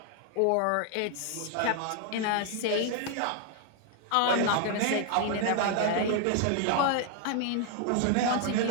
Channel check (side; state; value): both; different; correlation 0.00